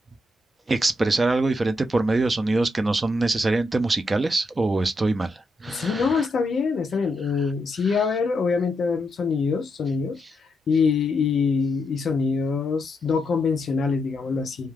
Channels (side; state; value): both; normal; correlation 0.82